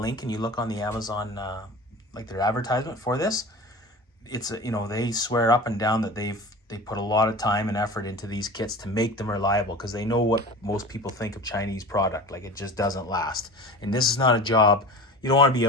link and you look on the Amazon, like their advertisement for this, it's, you know, they swear up and down that they put a lot of time and effort into these kits to make them reliable, because they know what most people think of Chinese product. Like, it just doesn't last. And this is not a job. You don't want to be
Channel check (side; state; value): both; normal; correlation 0.35